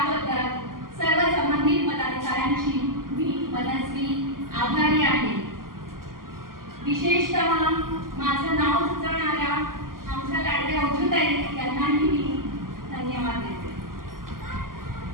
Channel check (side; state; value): left; late; 0.91 ms